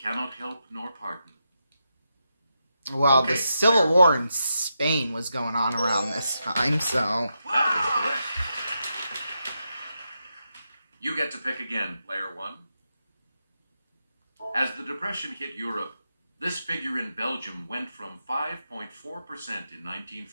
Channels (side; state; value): both; inverted; correlation -0.85